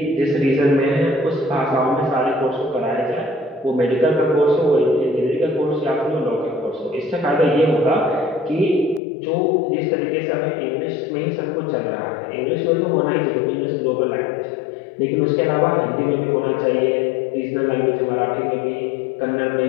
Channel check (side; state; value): right; drops out; at 9.0 s